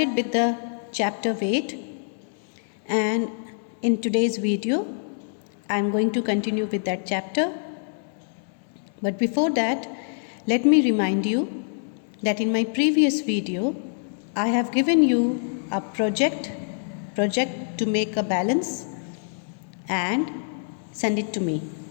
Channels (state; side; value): silent; right; digital silence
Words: with the chapter weight, and in today's video, I am going to continue with that chapter. But before that, let me remind you that in my previous video, I have given you a project to make a balance and send it to me.